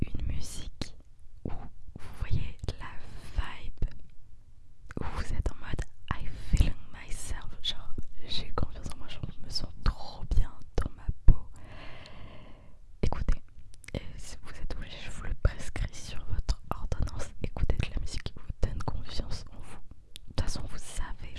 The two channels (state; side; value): identical; both; correlation 1.00